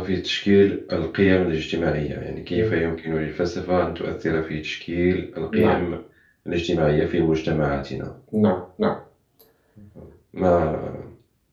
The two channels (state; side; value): identical; both; correlation 1.00